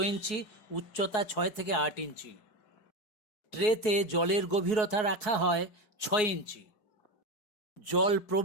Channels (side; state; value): right; late; 4.7 ms